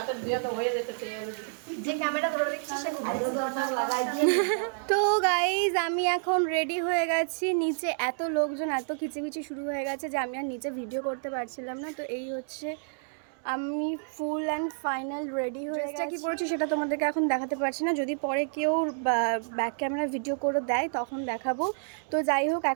যে ক্যামেরা ধরে দেখছিস সে তো গাইজ আমি এখন রেডি হয়ে গেছি। নিচে এত লোকজন, এত খিচিমিচি শুরু হয়ে গেছে যে আমি আর নিচে ভিডিও করতে পারছিলাম না। তো এই হচ্ছে আমি ফুল অ্যান্ড ফাইনাল রেডি হয়ে গেছি। কি করেছি সেটা তোমাদেরকে এখন দেখাতে পারছি না, যদি পরে কেউ ব্যাক ক্যামেরা ভিডিও করে দেয় তখন দেখাবো। তো যাই হোক,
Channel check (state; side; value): silent; left; digital silence